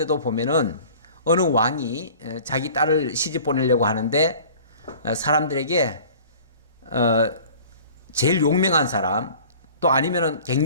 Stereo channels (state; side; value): inverted; both; correlation -0.46